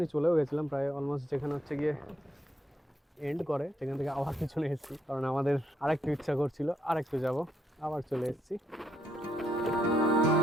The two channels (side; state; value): both; normal; correlation 0.75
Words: চলেও গেছিলাম, প্রায় অলমোস্ট যেখানে হচ্ছে গিয়ে এন্ড করে সেখান থেকে আবার পিছনে এসেছি, কারণ আমাদের আরেকটু ইচ্ছা করছিল আরেকটু যাব, আবার চলে এসেছি।